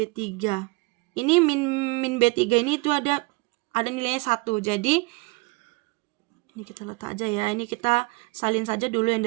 Ini min B3 ini itu ada nilainya 1. Jadi ini kita letak aja ya. Ini kita salin saja dulu yang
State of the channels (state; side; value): quieter; left; 26.3 dB